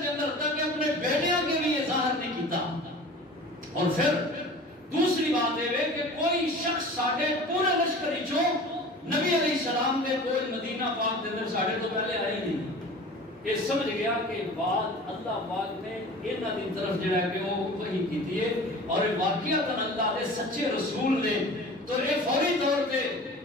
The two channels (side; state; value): both; normal; correlation 0.40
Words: کے اندر تک اپنے بیٹیاں کے بھی یہ ظاہر نہیں کیتا۔ اور پھر دوسری بات ہے کہ کوئی شخص ساڈے پورے لشکر چوں نبی علیہ السلام کے کوئی مدینہ پاک کے اندر ساڈے تو پہلے آئی نہیں۔ یہ سمجھ گیا کہ بات اللہ پاک نے انہاں دی طرف جڑا کہ وہ وحی کیتی ہے اور واقعتاً اللہ دے سچے رسول نے تو یہ فوری طور پہ